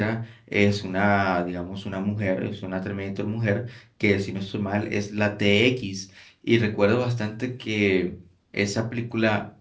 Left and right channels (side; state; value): both; identical; correlation 1.00